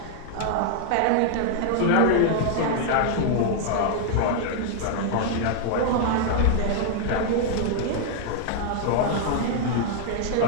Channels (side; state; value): both; different; correlation -0.01